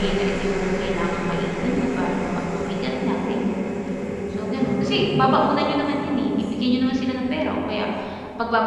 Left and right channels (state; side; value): identical; both; correlation 1.00